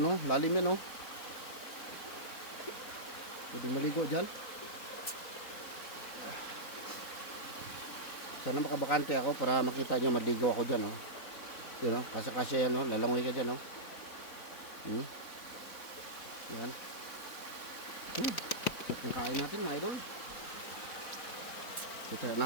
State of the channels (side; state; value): right; late; 4.0 ms